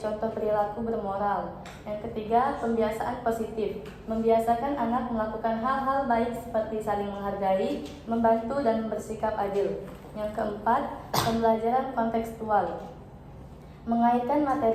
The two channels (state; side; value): identical; both; correlation 1.00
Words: perilaku bermoral. Yang ketiga, pembiasaan positif. Membiasakan anak melakukan hal-hal baik seperti saling menghargai, membantu, dan bersikap adil. Yang keempat, pembelajaran kontekstual. Mengaitkan